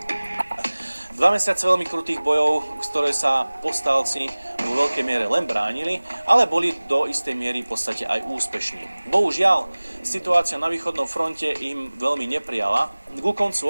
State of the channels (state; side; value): inverted; both; correlation -1.00